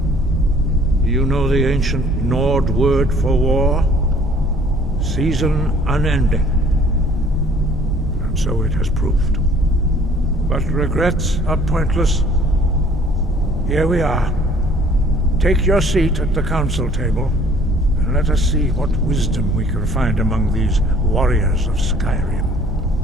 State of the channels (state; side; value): normal; both; correlation 0.55